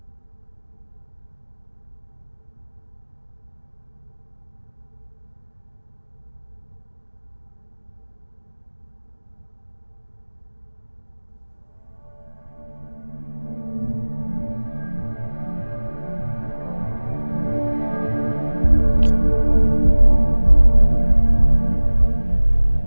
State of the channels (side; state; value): both; inverted; correlation -1.00